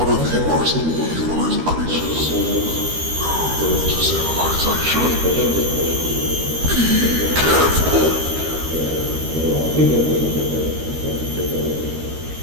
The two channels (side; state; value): left; late; 13 ms